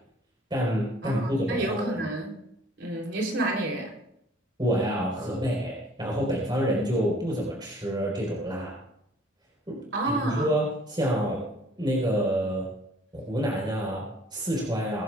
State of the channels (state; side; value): normal; both; correlation 0.56